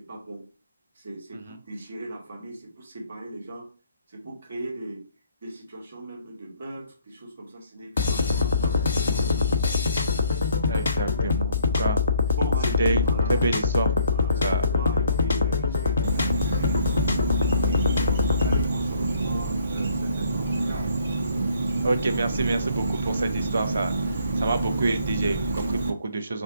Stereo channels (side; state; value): both; inverted; correlation -0.63